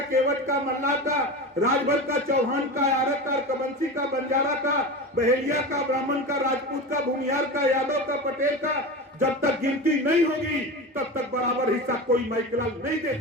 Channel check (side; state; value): both; normal; correlation 0.26